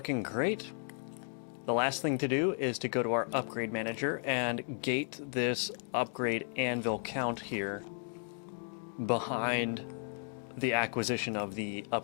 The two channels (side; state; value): right; silent; 55 dB below the other